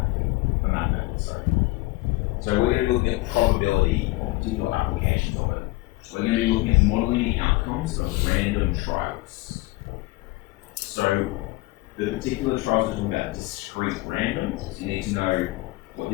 that method. So we're going to be looking at probability or particular applications of it. We're going to be looking at modeling the outcomes of random trials. So the particular trials are talking about discrete random. So you need to know what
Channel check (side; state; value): right; quieter; 20.4 dB